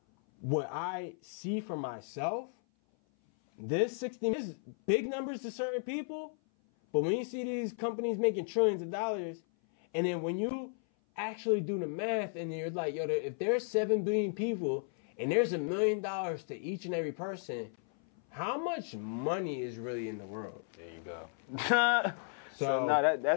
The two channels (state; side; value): silent; right; 55 dB below the other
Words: what I see for myself, this 60 is big numbers to certain people, but when you see these companies making trillions of dollars, and then when you actually do the math and you're like, if there's 7 billion people and there's $1 million to each and every person, how much money is really in the world? There you go. So no,